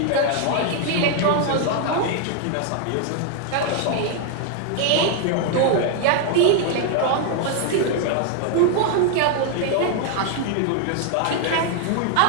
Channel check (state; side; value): different; both; correlation 0.00